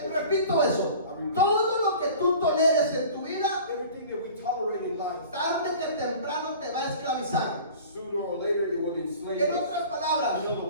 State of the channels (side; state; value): both; inverted; correlation -0.43